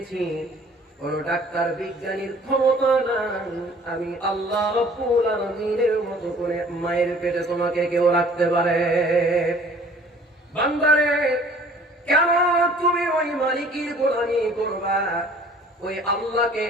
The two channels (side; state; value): both; normal; correlation 0.52